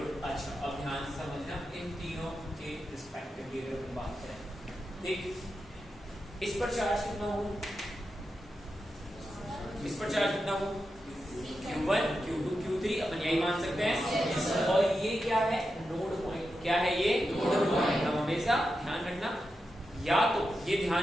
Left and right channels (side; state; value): both; normal; correlation 0.89